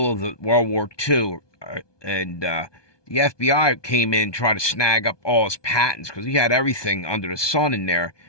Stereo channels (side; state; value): right; late; 1.2 ms